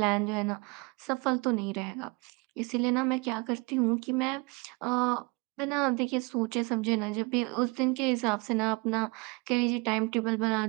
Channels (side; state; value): left; quieter; 28.5 dB